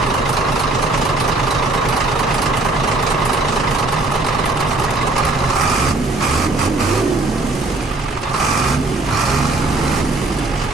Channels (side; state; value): left; quieter; 3.1 dB